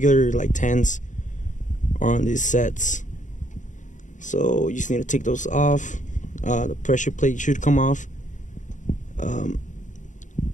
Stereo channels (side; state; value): right; late; 0.36 ms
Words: like 10s are on these sets. So you just need to take those off. The pressure plate should come off, and